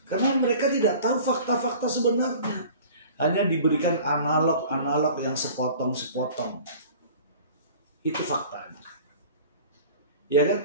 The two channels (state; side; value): inverted; both; correlation -0.44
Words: Karena mereka tidak tahu fakta-fakta sebenarnya. Hanya diberikan analog-analog yang sepotong-sepotong. Itu faktanya. Ya kan?